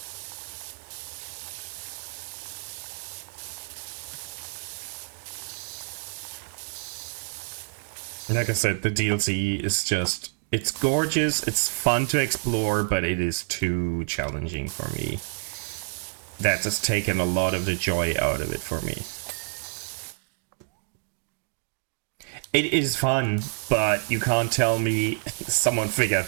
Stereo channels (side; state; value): left; silent; digital silence